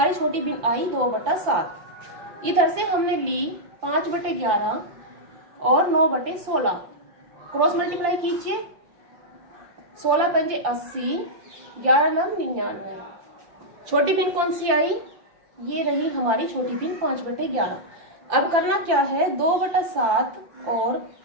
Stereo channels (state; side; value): late; left; 5.8 ms